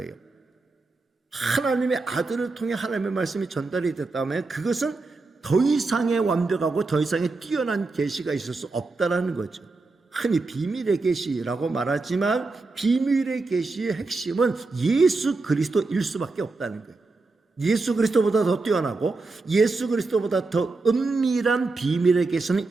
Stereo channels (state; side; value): quieter; left; 3.6 dB